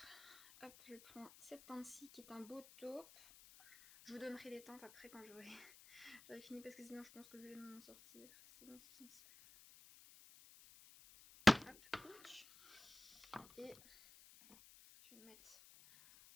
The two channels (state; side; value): noise; left; hiss, 20 dB below the sound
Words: Hop, je prends cette teinte-ci qui est un beau taupe. Je vous donnerai les teintes après quand j'aurai fini parce que sinon je pense que je vais m'en sortir. C'est dans ce sens-là. Hop, ouch. Et je vais le mettre